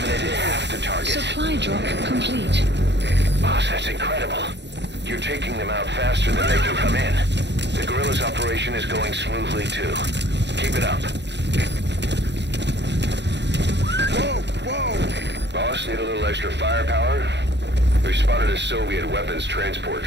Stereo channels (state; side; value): late; left; 0.51 ms